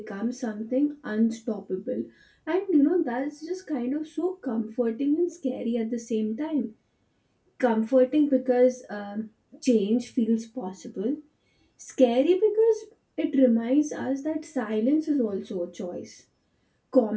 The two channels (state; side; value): identical; both; correlation 1.00